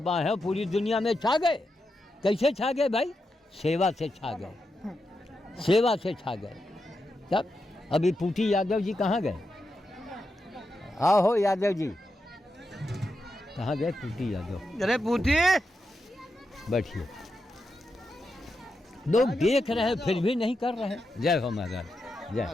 हैं, पूरी दुनिया में छा गए। कैसे छा गए भाई? सेवा से छा गए, सेवा से छा गए। तब अभी पूटी यादव जी कहाँ गए? आओ हो यादव जी, कहाँ गए पूटी यादव? अरे पूटी, बैठिए। लोग देख रहे हैं फिर भी नहीं कर रहे हैं। जय हो महाराज, जय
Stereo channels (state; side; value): normal; both; correlation 0.87